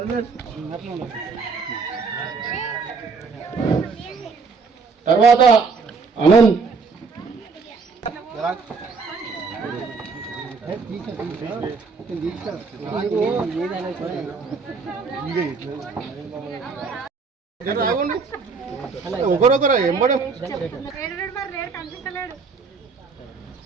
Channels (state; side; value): quieter; left; 4.8 dB